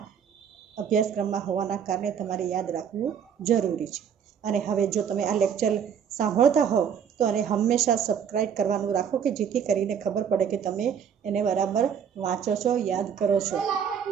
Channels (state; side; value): quieter; left; 7.9 dB